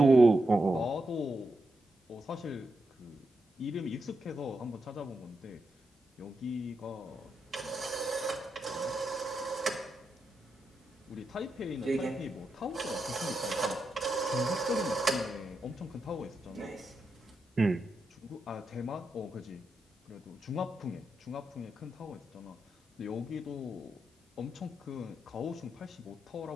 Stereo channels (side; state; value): both; normal; correlation 0.86